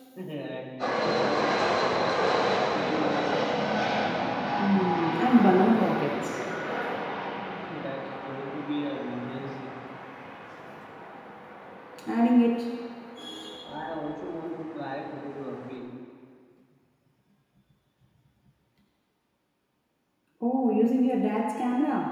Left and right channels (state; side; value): identical; both; correlation 1.00